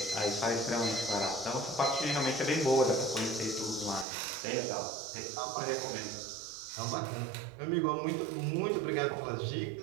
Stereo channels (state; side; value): drops out; left; at 4.0 s